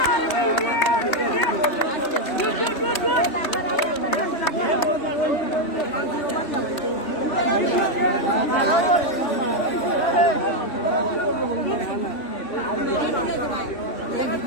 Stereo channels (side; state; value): right; late; 3.1 ms